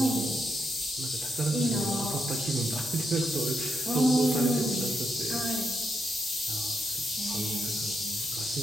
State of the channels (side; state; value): both; normal; correlation 0.81